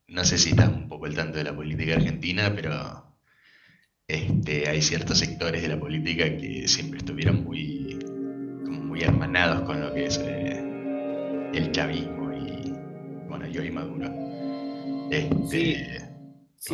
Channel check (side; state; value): both; identical; correlation 1.00